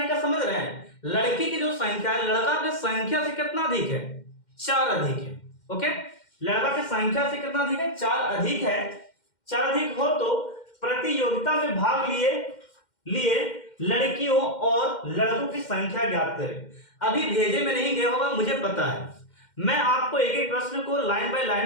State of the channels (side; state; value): right; late; 2.1 ms